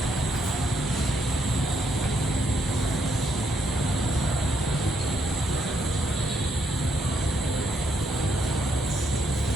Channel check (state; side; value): normal; both; correlation 0.75